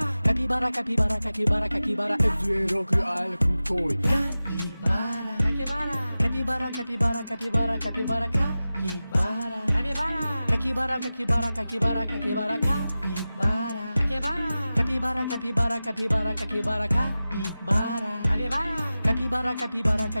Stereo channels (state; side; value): inverted; both; correlation -0.95